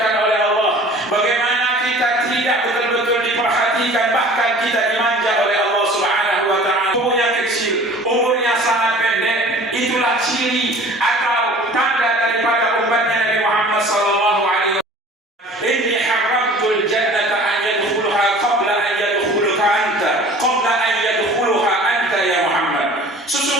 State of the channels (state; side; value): normal; both; correlation 0.46